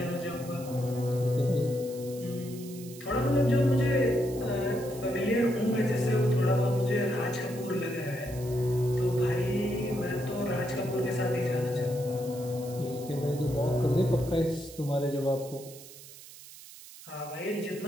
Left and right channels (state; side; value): noise; right; hiss, 17 dB below the sound